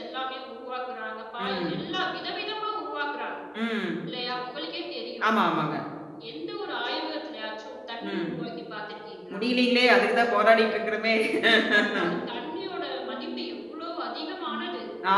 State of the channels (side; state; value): both; identical; correlation 1.00